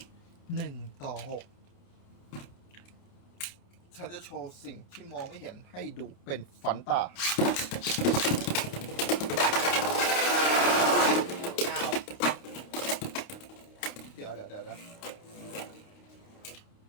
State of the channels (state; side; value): late; right; 29 ms